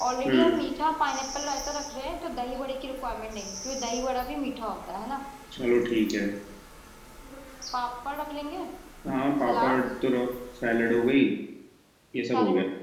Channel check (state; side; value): identical; both; correlation 1.00